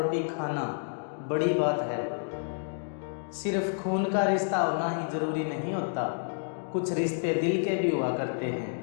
खाना बड़ी बात है। सिर्फ खून का रिश्ता होना ही ज़रूरी नहीं होता, कुछ रिश्ते दिल के भी हुआ करते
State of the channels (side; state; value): right; silent; digital silence